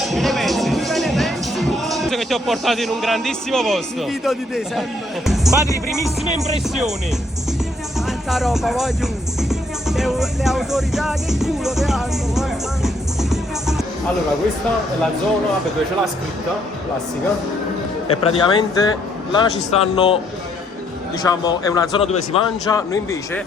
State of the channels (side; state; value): both; normal; correlation 0.70